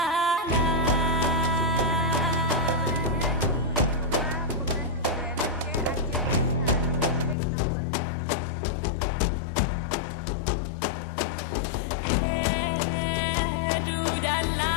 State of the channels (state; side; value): drops out; right; at 7.4 s